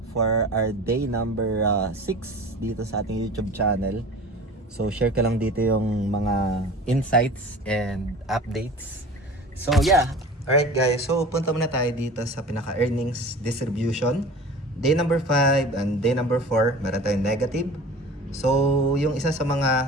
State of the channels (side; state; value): both; normal; correlation 0.39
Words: for our day number 6 dito sa ating YouTube channel. So share ko lang dito yung mga insights and updates. So yeah, alright guys, so punta muna tayo dito sa pinaka-earnings distribution. Day number 5 and day number 4, meron tayong negative. So yung isa sa mga